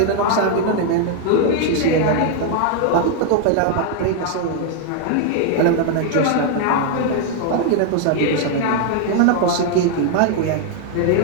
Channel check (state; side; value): different; both; correlation 0.00